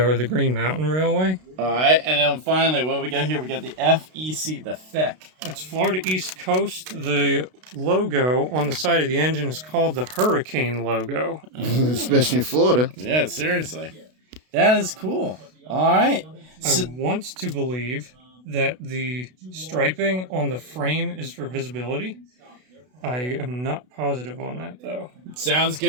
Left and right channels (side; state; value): left; late; 32 ms